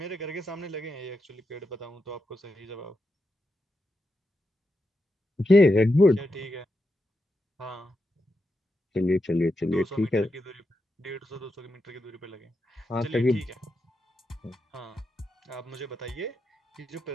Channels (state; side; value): normal; both; correlation 0.86